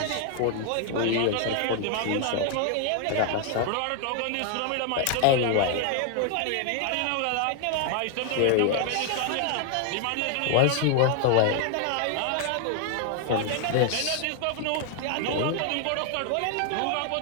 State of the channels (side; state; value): both; different; correlation 0.00